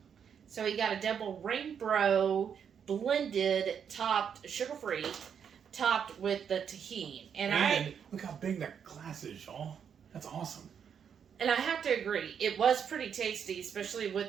So he got a double rainbow blended, topped sugar free, topped with the tahini, And look how big that glass is, y'all. That's awesome. And I have to agree, it was pretty tasty, especially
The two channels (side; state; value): left; quieter; 7.6 dB